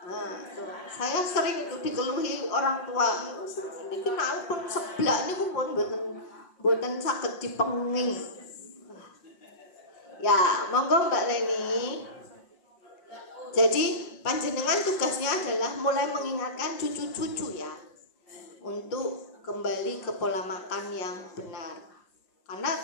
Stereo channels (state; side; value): late; right; 5.6 ms